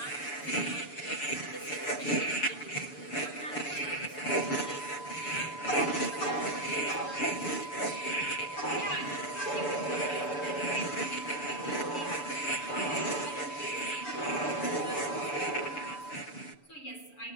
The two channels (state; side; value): late; right; 6.9 ms